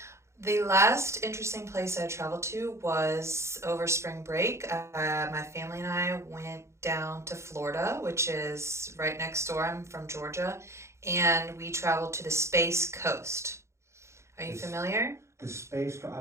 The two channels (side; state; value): left; late; 0.14 ms